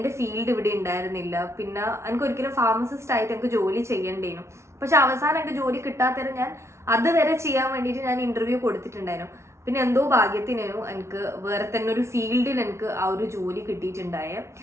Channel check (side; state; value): left; late; 0.13 ms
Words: ഫീൽഡ് ഇവിടെ ഉണ്ടായിരുന്നില്ല. പിന്നെ എനിക്ക് ഒരിക്കലും ഫാർമസിസ്റ്റ് ആയിട്ട് എനിക്ക് ജോലി ചെയ്യേണ്ടേനു. പക്ഷെ അവസാനം എനിക്ക് ജോലി കിട്ടാത്തതിന് ഞാൻ അതുവരെ ചെയ്യാൻ വേണ്ടിയിട്ട് ഞാൻ ഇൻ്റർവ്യൂ കൊടുത്തിട്ടുണ്ടായിരുന്നു. പിന്നെ എന്തോ ഭാഗ്യത്തിനു എനിക്ക് വേറെ തന്നെ ഒരു ഫീൽഡിൽ എനിക്ക് ആ ഒരു ജോലി കിട്ടിയിട്ടുണ്ടായ.